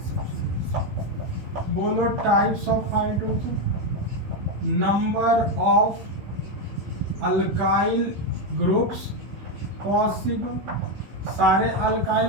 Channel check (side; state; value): left; late; 15 ms